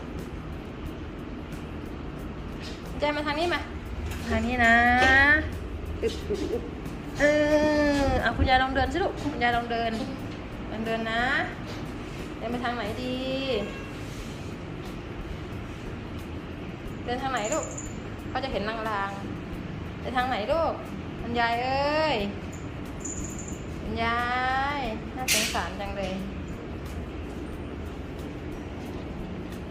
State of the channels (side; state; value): both; identical; correlation 1.00